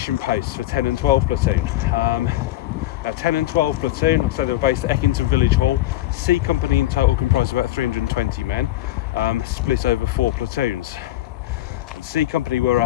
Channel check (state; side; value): quieter; right; 15.4 dB